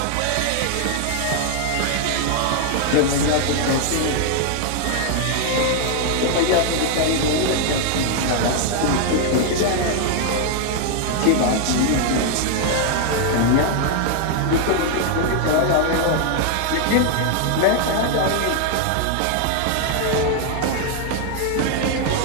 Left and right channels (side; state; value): both; different; correlation 0.00